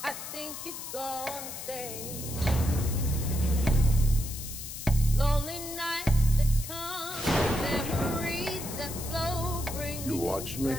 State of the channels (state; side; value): noise; left; hiss, 9 dB below the sound